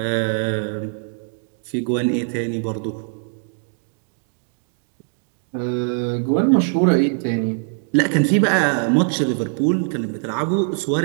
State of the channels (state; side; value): silent; left; digital silence